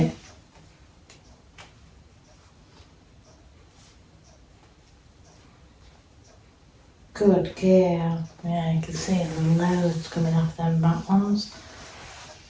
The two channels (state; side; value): identical; both; correlation 1.00